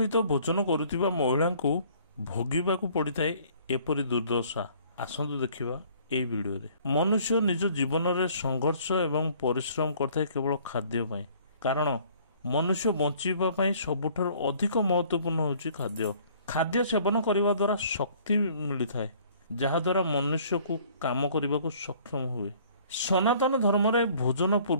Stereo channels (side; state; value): both; inverted; correlation -0.56